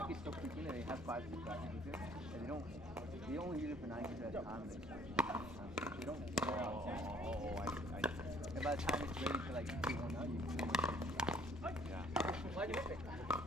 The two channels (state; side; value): normal; both; correlation 0.59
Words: so quickly that they have 5 6 rackets with it. And they only use it for 9 games at a time. They don't wear out. I see. And by the time it's ready to like do one out, you can Yeah. Why do you pick?